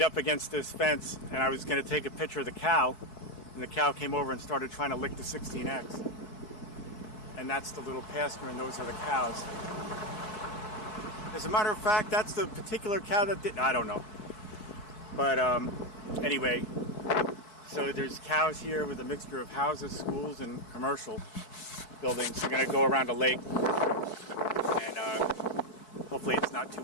up against this fence, and I was going to take a picture of the cow, and the cow came over and started trying to lick the 16X. And that's the little pasture, and those are the cows. As a matter of fact, that's the particular cow that did, I don't know. But anyway, so there's cows here with a mixture of houses, schools, and commercial buildings. We're going to go around a lake, and hopefully it's not too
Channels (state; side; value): late; right; 4.6 ms